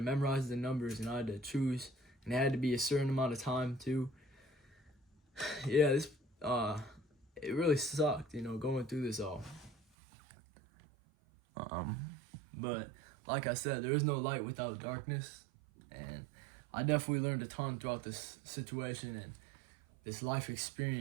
memorize the numbers, and I had to choose, and it had to be a certain amount of time too. This it really sucked, going through this all. But like I said, there is no light without darkness, and I definitely learned a ton throughout this situation and this life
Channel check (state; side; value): drops out; left; at 9.8 s